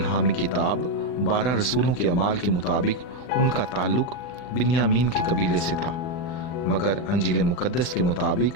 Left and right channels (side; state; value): right; late; 39 ms